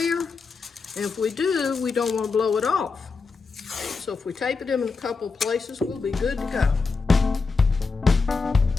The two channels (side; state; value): right; quieter; 4.6 dB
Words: And if we do, we don't want to blow it off. So if we tape it in a couple places, we'll be good to go.